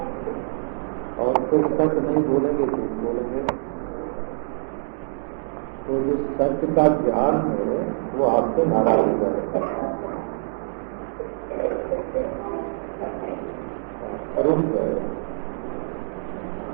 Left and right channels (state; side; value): silent; left; digital silence